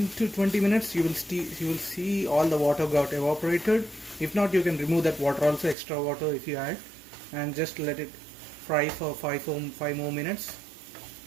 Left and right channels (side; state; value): left; drops out; at 5.8 s